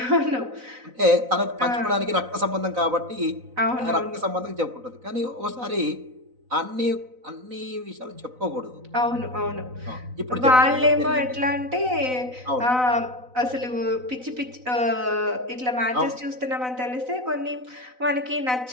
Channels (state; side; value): late; left; 4.0 ms